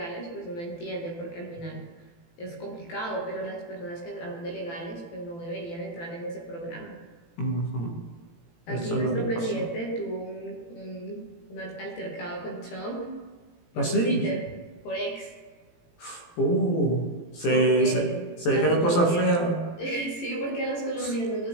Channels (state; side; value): late; right; 18 ms